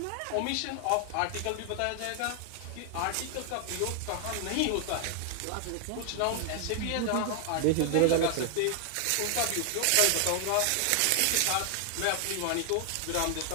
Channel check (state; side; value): different; both; correlation 0.00